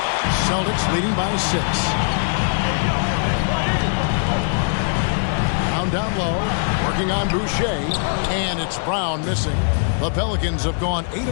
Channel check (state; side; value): silent; right; digital silence